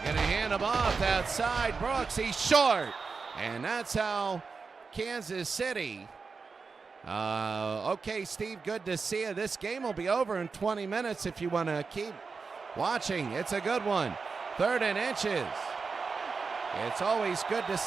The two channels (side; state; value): left; quieter; 4.8 dB